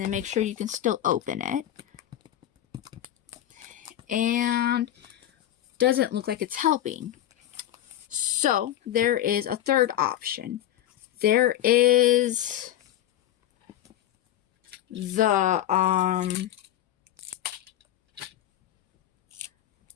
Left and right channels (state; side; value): quieter; right; 12.3 dB